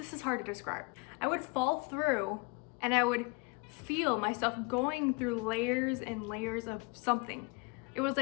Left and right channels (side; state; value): right; quieter; 27.6 dB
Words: hard to describe. I would fall through, and I would feel myself going through layers and layers of something. It was